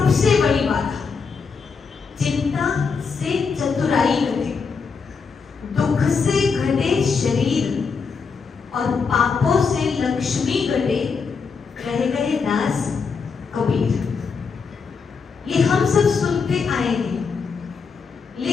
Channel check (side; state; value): right; quieter; 5.4 dB